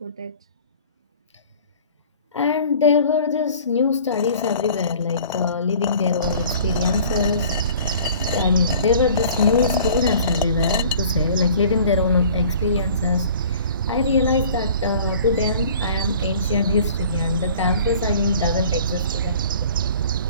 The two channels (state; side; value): inverted; both; correlation -0.48